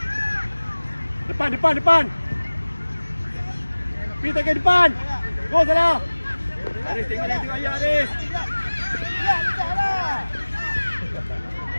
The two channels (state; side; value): inverted; both; correlation -1.00